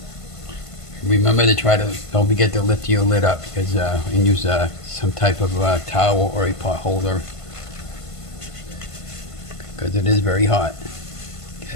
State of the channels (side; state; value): right; late; 1.5 ms